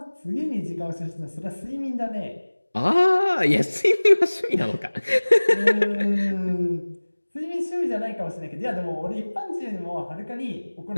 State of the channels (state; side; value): inverted; both; correlation -1.00